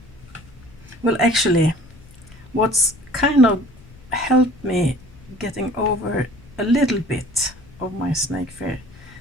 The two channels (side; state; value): left; noise; rumble, 22 dB below the sound